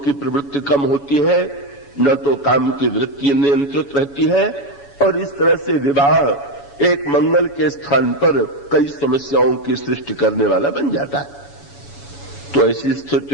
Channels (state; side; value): late; right; 7.1 ms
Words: की प्रवृत्ति कम होती है, न तो काम की वृत्ति नियंत्रित रहती है, और इस तरह से विवाह एक मंगल के स्थान पर कई समस्याओं की सृष्टि करने वाला बन जाता है। तो ऐसी